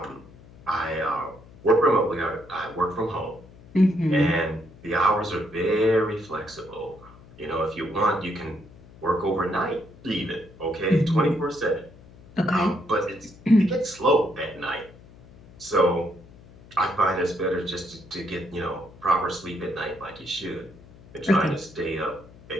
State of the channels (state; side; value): noise; left; hum, 22 dB below the sound